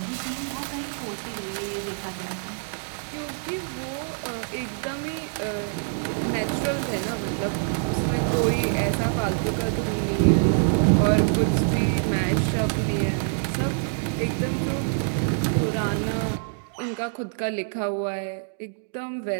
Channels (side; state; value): left; silent; digital silence